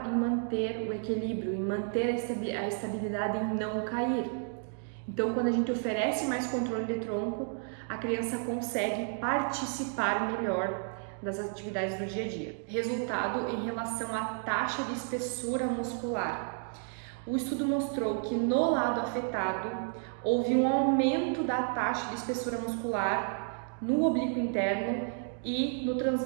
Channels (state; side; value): silent; left; 57 dB below the other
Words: em manter o equilíbrio, em manter a estabilidade, em não cair. Então, quando a gente oferece mais controle de tronco, a criança consegue participar melhor das atividades do dia a dia. Resultado em relação à taxa de espessura muscular. O estudo mostrou que no lado afetado houve um aumento da taxa de espessura muscular no oblíquo interno e no